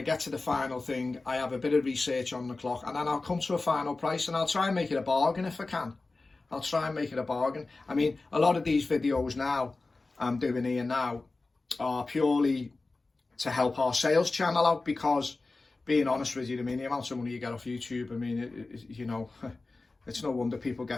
get to the final thing, I have a bit of research on the clock, and then I'll come to a final price, and I'll try and make it a bargain if I can. I'll try and make it a bargain. I mean, a lot of these videos now I'm doing here now are purely to help our sales channel out, because being honest with you, I mean, the amount of money you get off YouTube, I mean, you know, it's no wonder people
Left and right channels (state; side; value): quieter; right; 3.5 dB